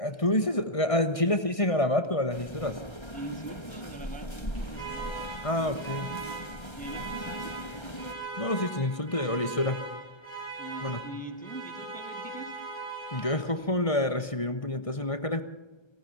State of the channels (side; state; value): right; late; 1.6 ms